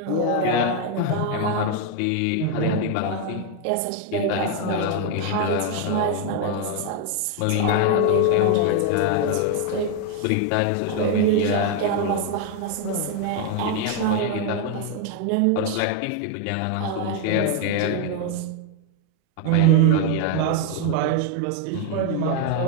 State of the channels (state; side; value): different; both; correlation 0.01